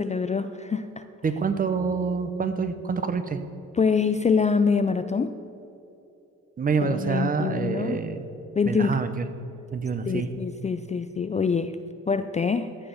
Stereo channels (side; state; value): both; normal; correlation 0.58